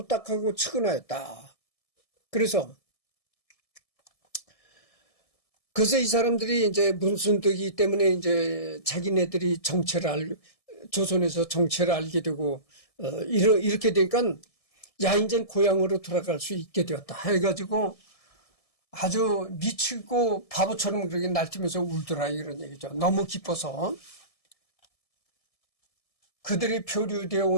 딱하고 측은하였다. 그래서 이 사람들이 이제 문순득이 때문에 이제 자기네들이 조선에서 정체를 알게 되고, 이렇게 되니까, 야, 이제 고향으로 돌아갈 수 있게 되었다. 해가지고 아주 미치고 바보처럼 그렇게 날뛰면서 울더라. 이런 얘기죠. 너무 기뻐서. 그들이 표류되어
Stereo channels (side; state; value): right; late; 1.7 ms